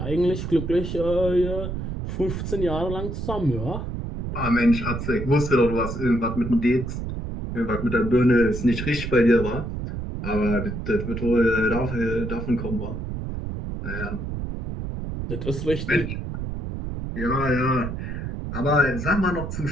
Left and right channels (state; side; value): noise; right; rumble, 5 dB below the sound